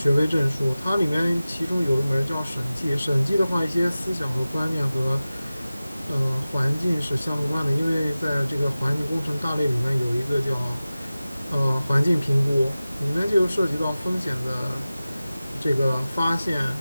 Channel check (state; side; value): inverted; both; correlation -0.96